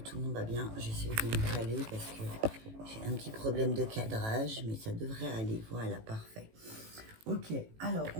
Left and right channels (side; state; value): left; late; 18 ms